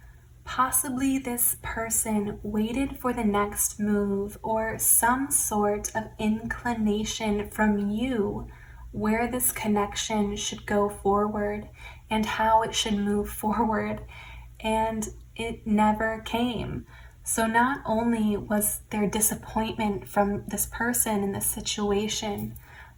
Possibly this person waited for the next move or some sort of inclination from you where this connection should go forward and how it should move forward, and it never came. So not only was there disappointment from this person in this situation,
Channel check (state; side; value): identical; both; correlation 1.00